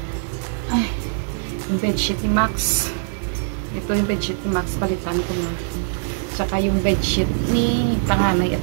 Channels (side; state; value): left; silent; digital silence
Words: Ay, yung bedsheet ni Max. Ito yung bedsheet ni Max, palitan ko na. Tsaka yung bedsheet ni panganay at